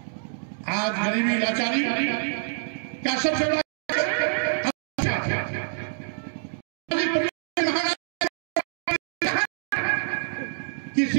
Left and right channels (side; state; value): left; silent; digital silence